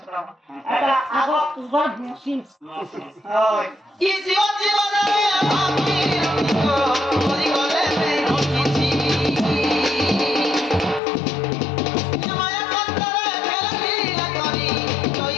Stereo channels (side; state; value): right; drops out; at 11.0 s